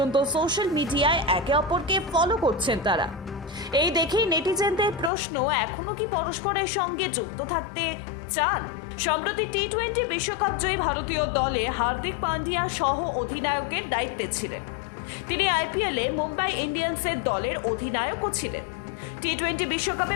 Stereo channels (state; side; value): drops out; right; at 5.1 s